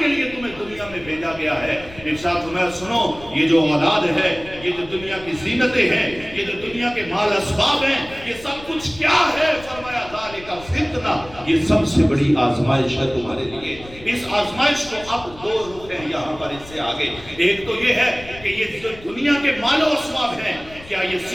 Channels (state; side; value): noise; left; rumble, 19 dB below the sound